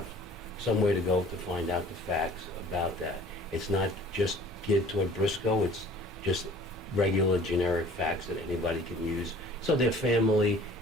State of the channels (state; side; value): normal; both; correlation 0.49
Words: somewhere to go to find out the facts about that. It's not just geared toward Briscoe, it's just regular generic facts that anybody can use so their family